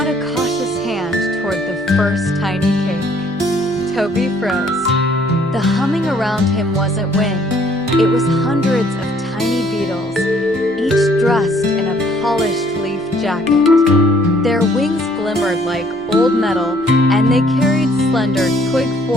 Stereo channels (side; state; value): left; noise; hum, 27 dB below the sound